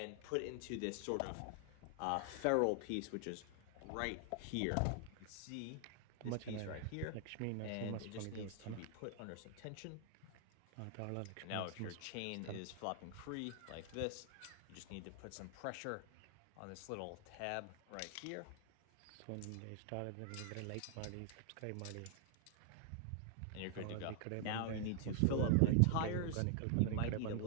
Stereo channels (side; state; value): both; different; correlation 0.00